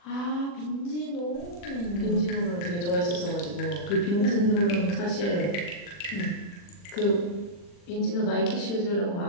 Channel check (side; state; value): right; late; 40 ms